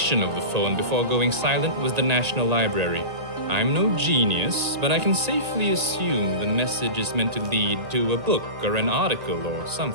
of the phone before going silent was the National Library. I'm no genius, but I can safely assume the message is meant to lead to a book or an article or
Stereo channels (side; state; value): left; late; 1.8 ms